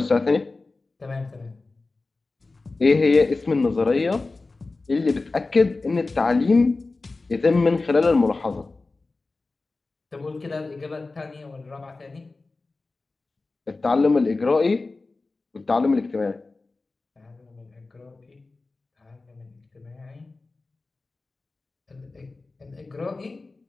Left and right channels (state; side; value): quieter; right; 3.5 dB